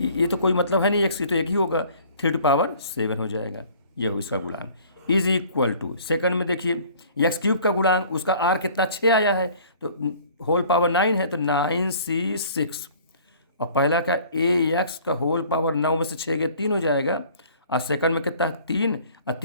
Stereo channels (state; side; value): inverted; both; correlation -0.52